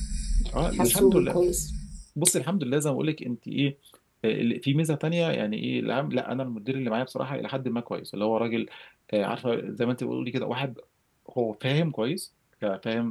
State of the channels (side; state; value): both; identical; correlation 1.00